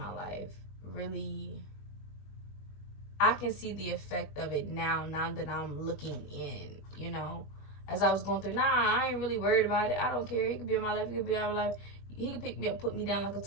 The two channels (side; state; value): right; late; 20 ms